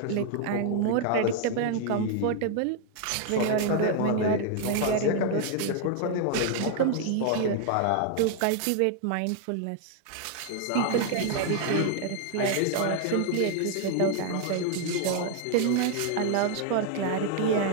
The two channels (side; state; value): both; different; correlation 0.00